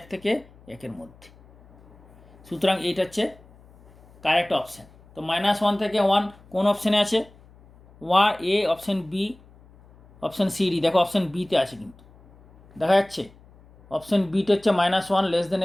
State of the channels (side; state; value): left; noise; hum, 26 dB below the sound